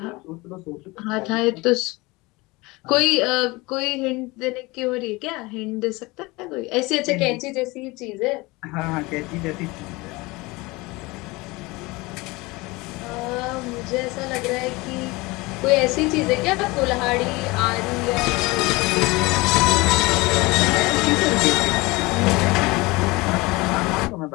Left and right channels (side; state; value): right; quieter; 23.1 dB